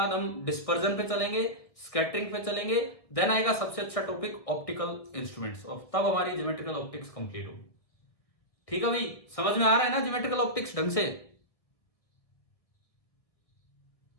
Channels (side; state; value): right; late; 1.6 ms